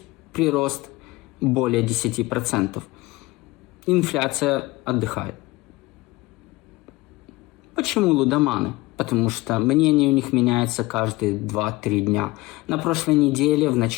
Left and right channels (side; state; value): right; quieter; 20.7 dB